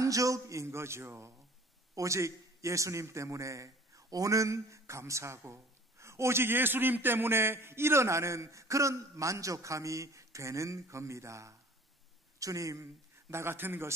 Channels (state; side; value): normal; both; correlation 0.49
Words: 거죠. 오직 예수님 때문에 오는 감사고, 오직 예수님 때문에 일어나는 그런 만족함이 되는 겁니다. 주님, 나 같은